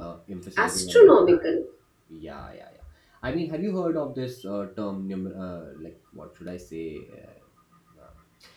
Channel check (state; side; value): identical; both; correlation 1.00